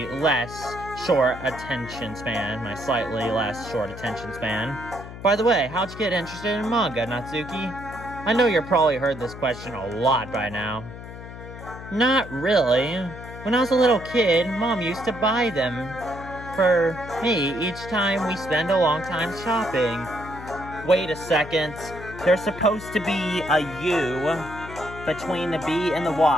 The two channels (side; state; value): left; noise; hum, 13 dB below the sound